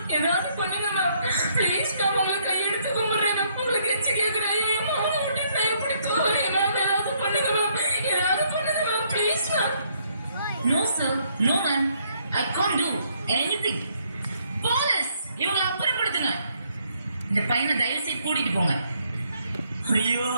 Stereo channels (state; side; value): inverted; both; correlation -0.70